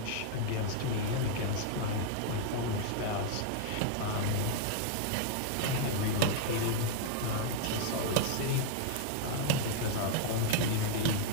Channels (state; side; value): different; both; correlation 0.00